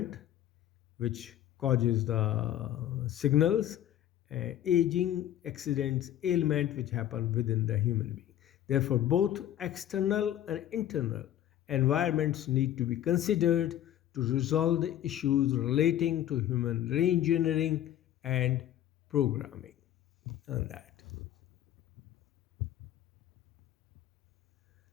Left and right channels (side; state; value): right; quieter; 11.9 dB